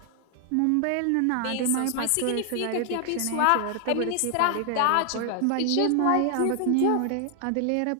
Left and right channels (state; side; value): different; both; correlation 0.00